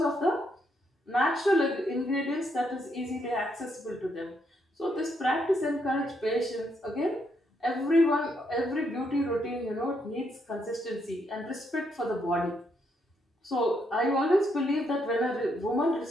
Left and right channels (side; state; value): both; normal; correlation 0.76